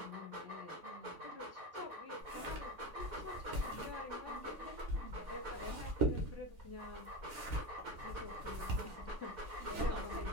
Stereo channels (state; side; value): late; left; 3.5 ms